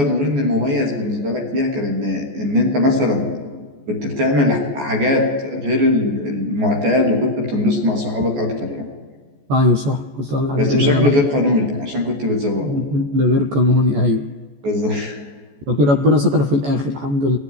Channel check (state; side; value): late; left; 14 ms